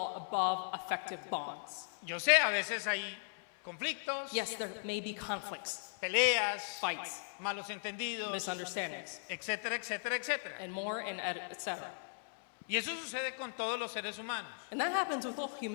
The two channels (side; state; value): right; silent; 53 dB below the other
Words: above effective bonds. Yo sé, a veces hay conflictos, Yes, there may be conflicts, peleas, fights, malos entendidos, misunderstandings, etcétera, etcétera, etcétera. and more, and etc. Y eso sucede con todos los seres humanos. And that happens with all